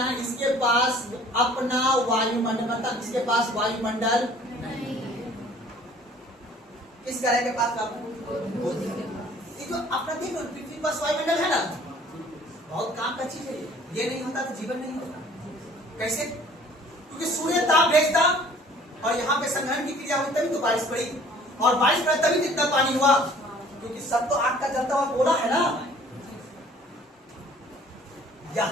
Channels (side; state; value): both; normal; correlation 0.53